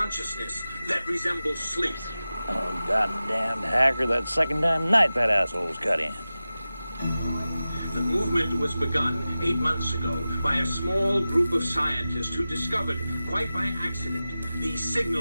that resembles sleep. Oh, goddamn hacker, that second time tonight that asshole's cut in. The movement was begun 8 months ago by a small group of scientists who discovered, quite by accident, these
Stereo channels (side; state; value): both; inverted; correlation -0.95